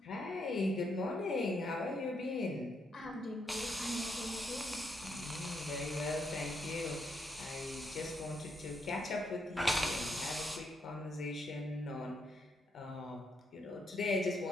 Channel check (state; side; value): normal; both; correlation 0.77